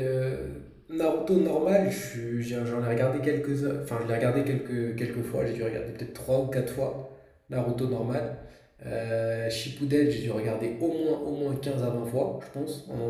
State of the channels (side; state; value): both; identical; correlation 1.00